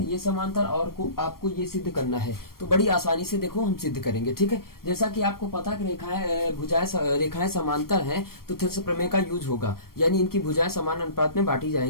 समांतर और आपको ये सिद्ध करना है। तो बड़ी आसानी से देखो हम सिद्ध करेंगे। ठीक है, जैसा कि आपको पता कि रेखाएं समांतर हैं तो थेल्स प्रमेय का यूज होगा, यानी इनकी भुजाएं समान अनुपात में बांटी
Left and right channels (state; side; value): late; right; 0.93 ms